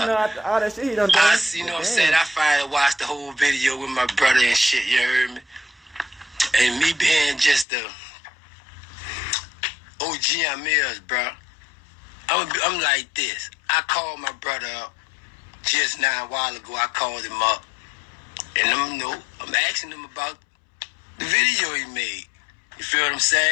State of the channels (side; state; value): right; drops out; at 7.7 s